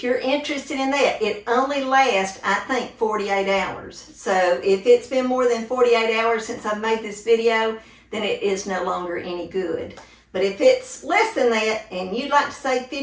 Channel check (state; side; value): identical; both; correlation 1.00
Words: you're interested in that, it only lasts, I think, 48 hours. So if it's been more than 48 hours since I've made this video, then it is no longer any good. But if it's less than that and you'd like to save